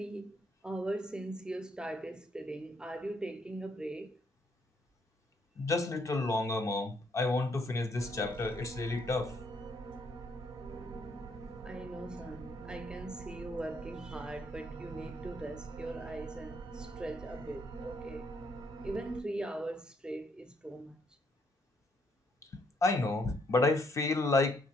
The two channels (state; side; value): normal; both; correlation 0.71